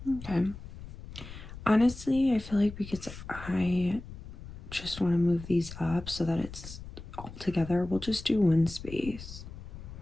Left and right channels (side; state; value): left; noise; rumble, 13 dB below the sound